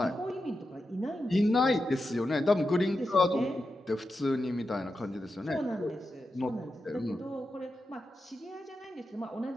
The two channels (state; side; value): normal; both; correlation 0.89